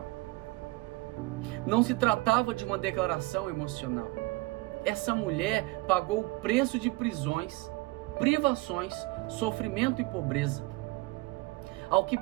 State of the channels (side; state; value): left; quieter; 22.9 dB